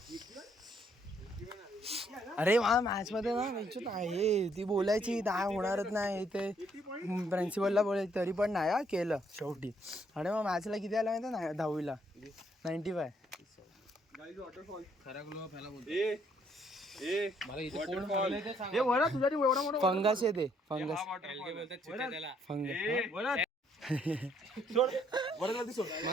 अरे मला मॅथ्स मध्ये ना विचार आहे ती बोलायची नाही होणारच नाही ते प्रिन्सिपलला बोलायचं तरी पण नाही हा केलं शेवटी. आणि मग मॅथ्सला किती आलं माहिती ना 10वीला 95. खरा ग्लो फॅला बोलतो. मला इथे कोण हरवलंय ते सांग. फंगस येते फंगस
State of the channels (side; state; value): both; normal; correlation 0.69